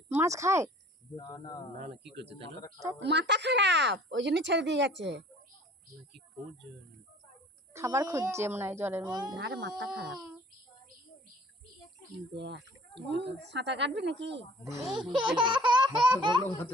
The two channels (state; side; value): normal; both; correlation 0.50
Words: মাছ খায়? না না কি করছে তাহলে? মাথা খারাপ, ওই জন্য ছেড়ে দিয়ে গেছে। কি খুঁজছে? খাবার খুঁজছে মনে হয় জলের মধ্যে। আরে মাথা খারাপ। দেখ সাঁতার কাটবি নাকি?